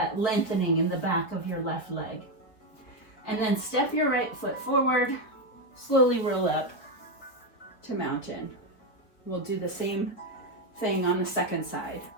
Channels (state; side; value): late; right; 4.4 ms